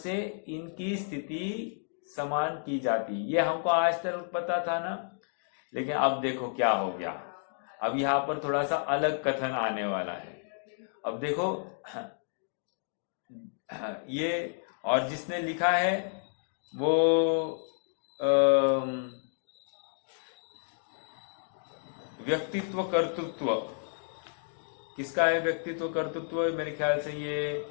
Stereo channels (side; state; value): right; silent; digital silence